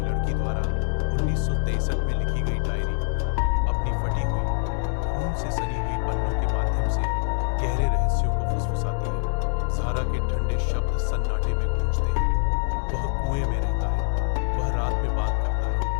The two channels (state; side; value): silent; right; digital silence